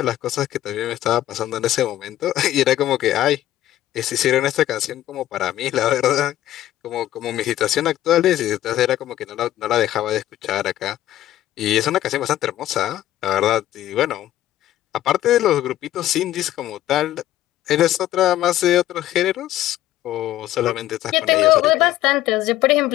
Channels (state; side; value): quieter; right; 13.6 dB